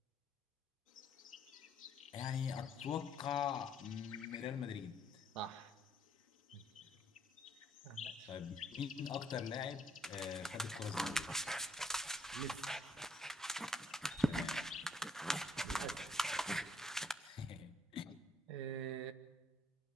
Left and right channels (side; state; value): both; normal; correlation 0.68